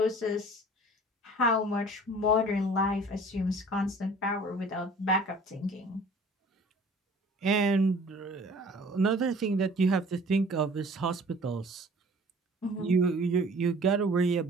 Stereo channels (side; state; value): both; normal; correlation 0.49